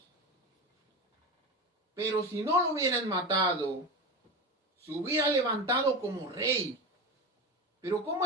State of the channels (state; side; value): normal; both; correlation 0.23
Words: Pero si no lo hubieran matado, se hubiera levantado como rey. Pero ¿cómo